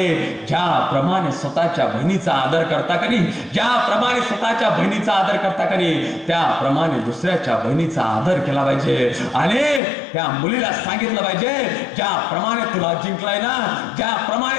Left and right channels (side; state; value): right; drops out; at 9.8 s